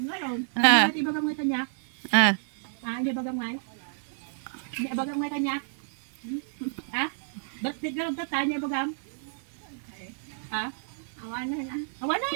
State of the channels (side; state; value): left; silent; digital silence